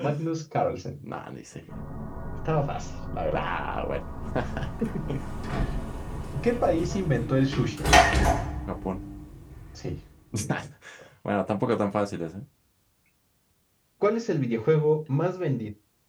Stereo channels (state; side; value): identical; both; correlation 1.00